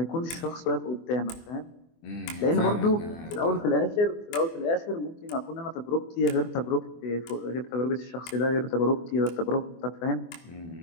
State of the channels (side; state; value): right; late; 24 ms